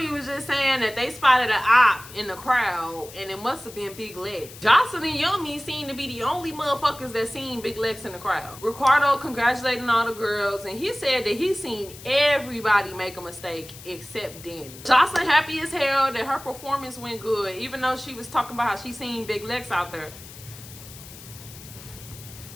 was just saying that they spotted an op in the crowd and it must have been Big Lex. Joseline and Yummy seem to be the only motherfuckers that seen Big Lex in the crowd. Ricardo congratulating all the girls and he said that he seen everybody make a mistake except Danny. Joseline happy as hell that her performance went good, even though she was talking about how she seen Big Lex out there.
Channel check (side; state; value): left; noise; hiss, 17 dB below the sound